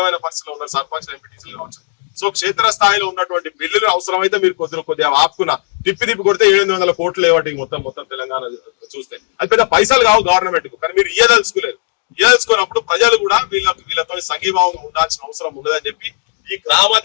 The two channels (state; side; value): silent; right; 67 dB below the other